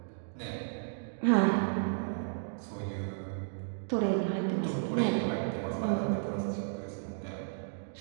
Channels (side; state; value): left; silent; digital silence